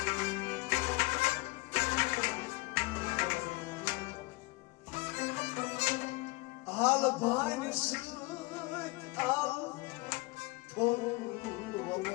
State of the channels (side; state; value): right; quieter; 25.0 dB